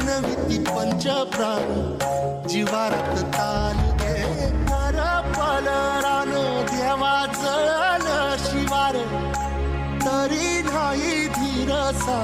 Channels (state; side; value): identical; both; correlation 1.00